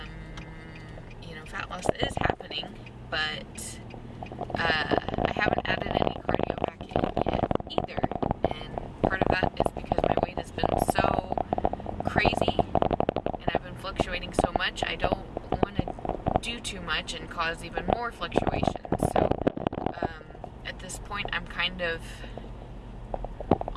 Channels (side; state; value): both; identical; correlation 1.00